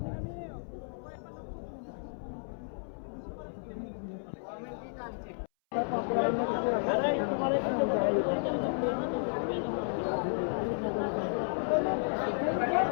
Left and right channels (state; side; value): silent; right; 56 dB below the other